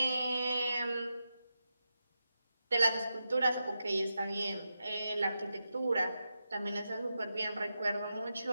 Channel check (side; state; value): both; inverted; correlation -0.88